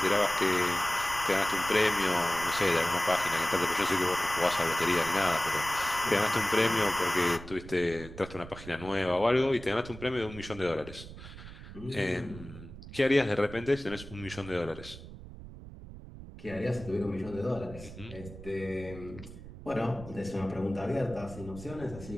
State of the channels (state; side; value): noise; right; rumble, 14 dB below the sound